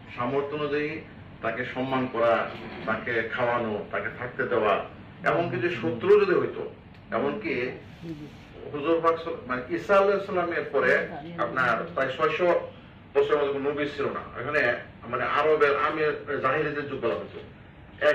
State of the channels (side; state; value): both; identical; correlation 1.00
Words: সামর্থ্য অনুযায়ী তাকে সম্মান করা, তাকে খাওয়ানো, তাকে থাকতে দেওয়া। এমনকি যে শত্রু যদি হইতো, এমনকি হুজুর পাক ঈসা আলাইহিস সালামের পরে আপনার প্রায় 600 বছর নবী ছিল না। এখানে আরবের আমের জাহিলিদের যুগ বলা হতো।